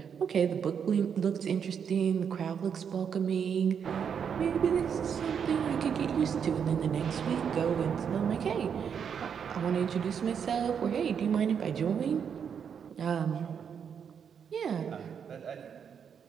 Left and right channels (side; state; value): left; quieter; 7.4 dB